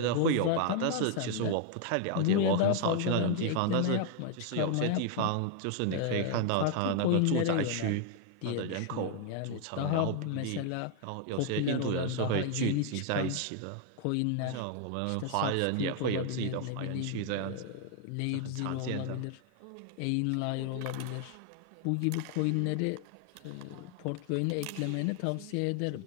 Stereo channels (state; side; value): different; both; correlation 0.00